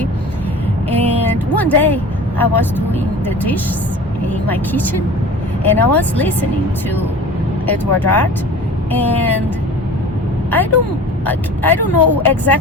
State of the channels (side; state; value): both; normal; correlation 0.39